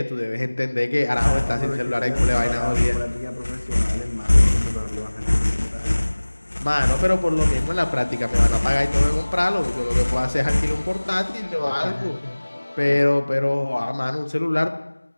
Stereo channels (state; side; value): inverted; both; correlation -1.00